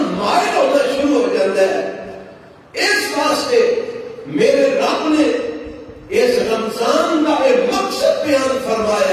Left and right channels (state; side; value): identical; both; correlation 1.00